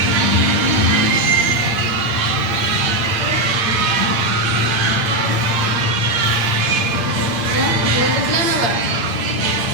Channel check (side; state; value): left; late; 8.7 ms